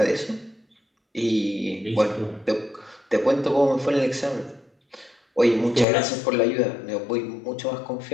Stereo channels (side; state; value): right; drops out; at 5.9 s